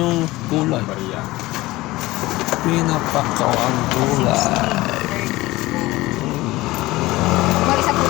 gulay. Maria. Pinapak ko ang gulay. Mga isang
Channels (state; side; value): quieter; right; 19.1 dB